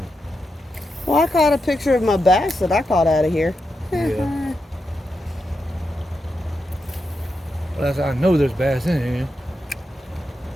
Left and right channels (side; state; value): both; normal; correlation 0.86